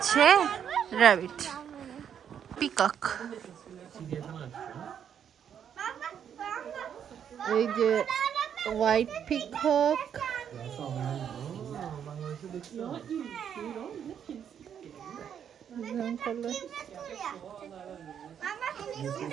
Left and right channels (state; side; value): quieter; left; 8.6 dB